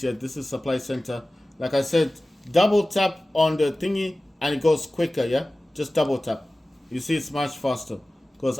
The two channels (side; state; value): both; normal; correlation 0.97